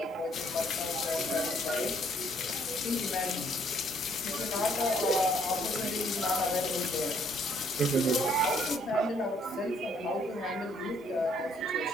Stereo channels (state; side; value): normal; both; correlation 0.65